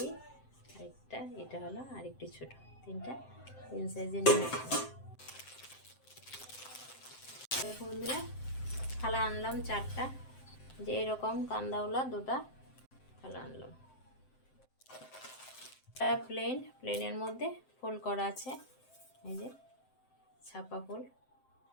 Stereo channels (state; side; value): late; right; 7.7 ms